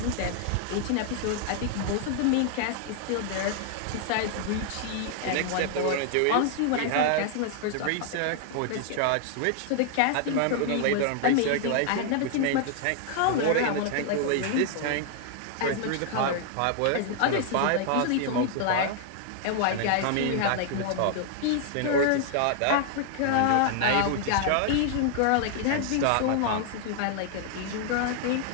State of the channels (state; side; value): different; both; correlation 0.00